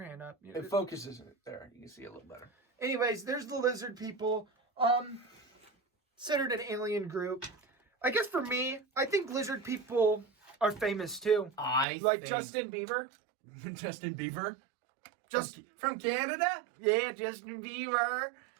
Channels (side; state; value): left; drops out; at 11.9 s